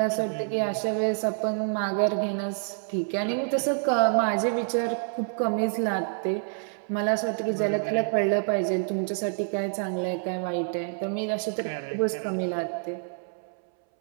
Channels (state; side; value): silent; left; 60 dB below the other